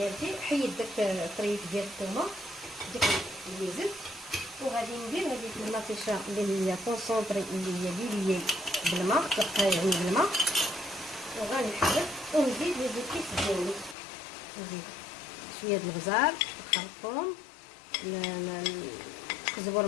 حيد داك الطريف ديال الثومه ديك اللي زدت، وغادي ندير هذيك المطيشه اللي هي كونسونطري اللي هي ليلي بالماء يعني بالماء، وغنحرك ونزيد الكيس ديالي، نزيد شويه د البزار الخرطوم الزبور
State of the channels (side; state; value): right; drops out; at 14.0 s